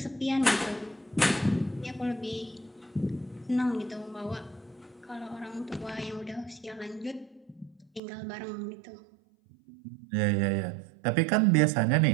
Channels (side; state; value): left; drops out; at 8.0 s